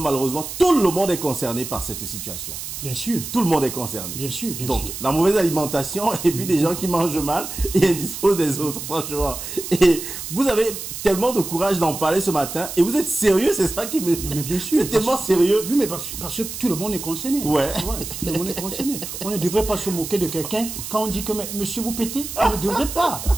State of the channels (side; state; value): right; noise; hiss, 8 dB below the sound